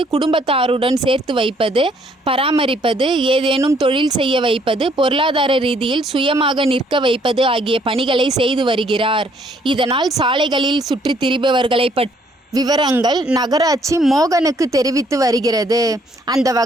குடும்பத்தாருடன் சேர்த்து வைப்பது, பராமரிப்பது, ஏதேனும் தொழில் செய்ய வைப்பது, பொருளாதார ரீதியில் சுயமாக நிற்க வைப்பது ஆகிய பணிகளை செய்து வருகிறார். இதனால் சாலைகளில் சுற்றி திரிபவர்களை பற்றி விவரங்கள் நகராட்சி மோகனுக்கு தெரிவித்து வருகிறது. அந்த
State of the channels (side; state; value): both; normal; correlation 0.66